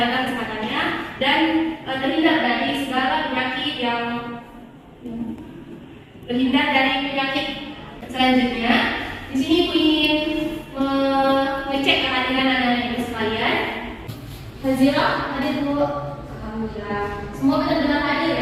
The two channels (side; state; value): both; identical; correlation 1.00